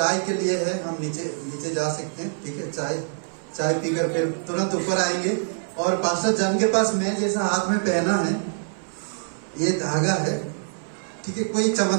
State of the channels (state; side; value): silent; left; 58 dB below the other